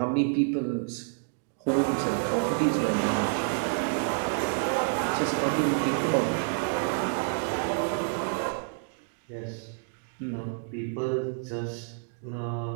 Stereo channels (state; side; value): silent; left; digital silence